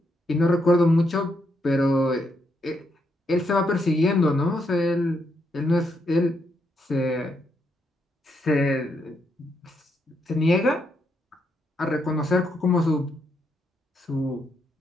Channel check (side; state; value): both; normal; correlation 0.78